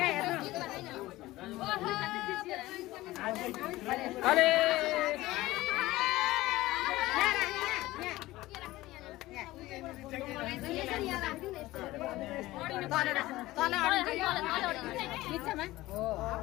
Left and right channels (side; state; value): right; quieter; 17.9 dB